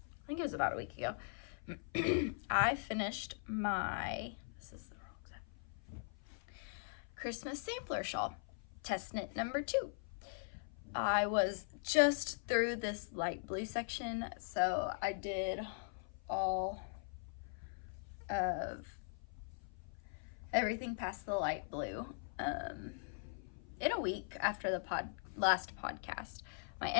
think it was about a week ago. I finished my, this is the wrong side, Christmas sampler shawl. Test knit number 2. I was just through this light blue section, so I did all of everything past the light blue in a week after the last podcast. My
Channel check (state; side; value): silent; right; 50 dB below the other